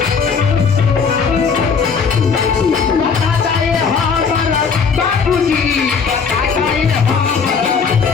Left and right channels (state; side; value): quieter; right; 5.8 dB